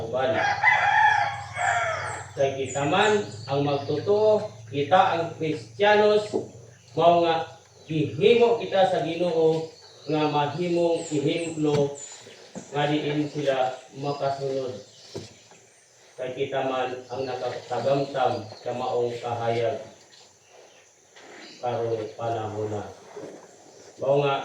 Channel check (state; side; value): identical; both; correlation 1.00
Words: uban. Kay kita man ang magtotoo, kita ang Kristiyanos, mao nga gihimo kita sa Ginoo nga mahimong ihimplo nga diin sila makasunod. Kay kita man ang nakatagamtam sa maong kahayag karong panahon na. Mao